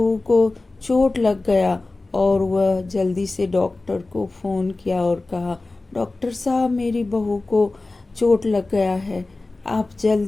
को चोट लग गया। और वह जल्दी से डॉक्टर को फ़ोन किया और कहा, डॉक्टर साहब, मेरी बहू को चोट लग गया है, आप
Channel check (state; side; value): quieter; right; 3.2 dB